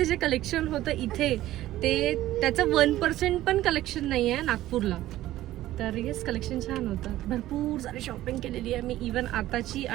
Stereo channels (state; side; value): quieter; left; 14.8 dB